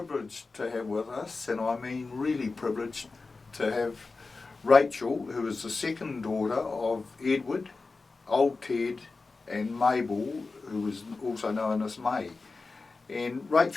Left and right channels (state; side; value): quieter; right; 3.9 dB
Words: to have with us, and I mean really privileged, to have Rachel, who is the second daughter of Edward, Old Ted and Mabel, who is also known as May. And